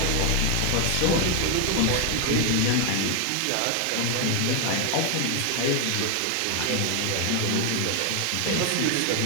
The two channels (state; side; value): different; both; correlation 0.00